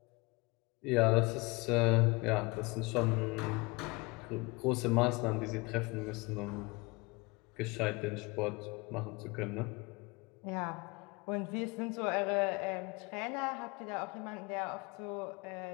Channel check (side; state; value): right; quieter; 26.0 dB